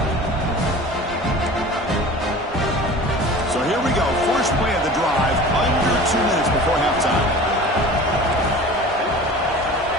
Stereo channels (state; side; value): normal; both; correlation 0.40